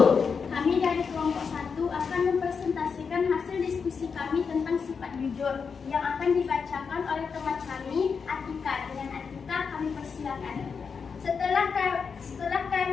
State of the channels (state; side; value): quieter; right; 5.8 dB